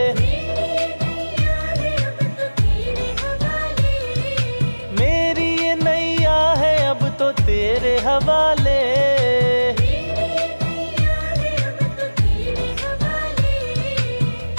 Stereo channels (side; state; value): both; inverted; correlation -1.00